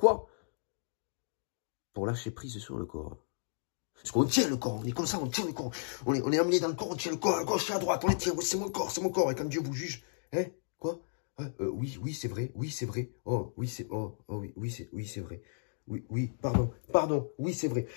Pour lâcher prise sur le corps. Parce qu'on tient le corps, on est comme ça, on tient le corps. On est amené dans le corps, on tient le corps, à gauche et à droite, on les tient, c'est mon corps, c'est mon corps. Et quand Dieu vous juge, hein, quoi? Oui, c'est vrai, oui, c'est vrai. Oh, oui, c'est, oui, c'est vrai. Oui, pardon, oui, c'est vrai.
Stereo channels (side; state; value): right; silent; digital silence